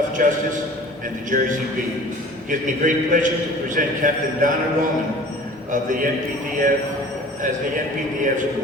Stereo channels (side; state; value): both; normal; correlation 0.45